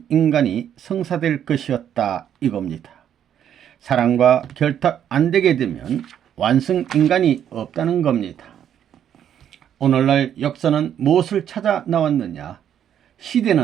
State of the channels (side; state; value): left; quieter; 9.6 dB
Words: 인간이 성사될 것이었다 이겁니다. 사랑과 결탁 안 되게 되면 완성 인간이 없다는 겁니다. 오늘날 역사는 무엇을 찾아 나왔느냐?